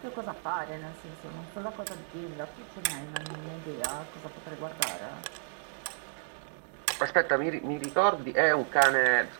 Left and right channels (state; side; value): silent; left; digital silence